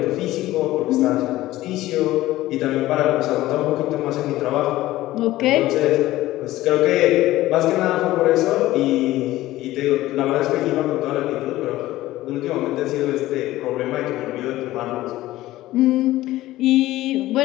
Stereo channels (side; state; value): right; quieter; 16.2 dB